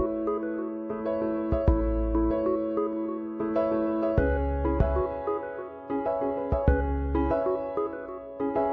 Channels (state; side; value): identical; both; correlation 1.00